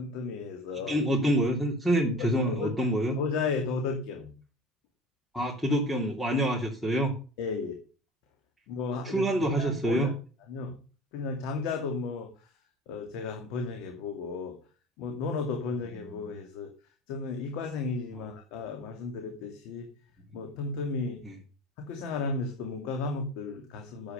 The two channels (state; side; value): normal; both; correlation 0.39